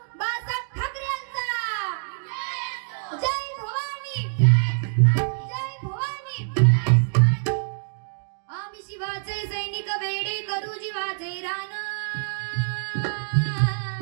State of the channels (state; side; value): silent; left; digital silence